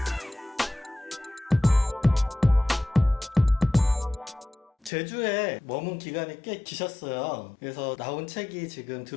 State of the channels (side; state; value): right; drops out; at 4.9 s